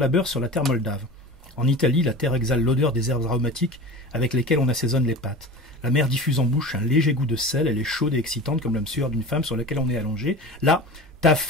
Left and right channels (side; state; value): both; normal; correlation 0.35